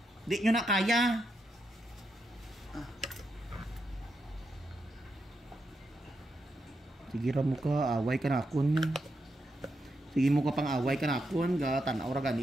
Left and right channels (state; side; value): normal; both; correlation 0.83